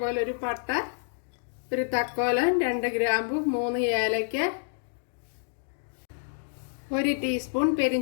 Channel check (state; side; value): silent; right; digital silence